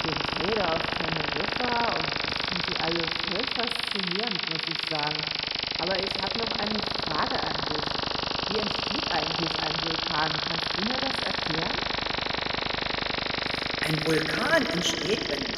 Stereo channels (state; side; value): identical; both; correlation 1.00